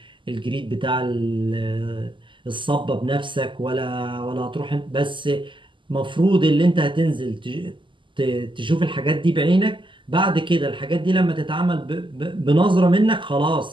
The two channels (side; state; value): left; late; 0.24 ms